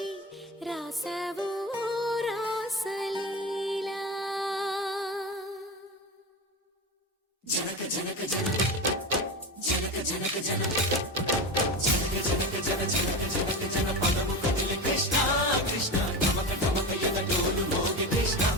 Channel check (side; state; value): both; normal; correlation 0.24